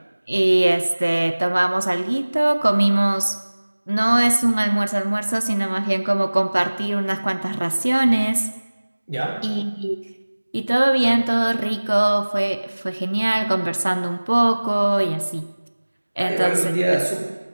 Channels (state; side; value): inverted; both; correlation -1.00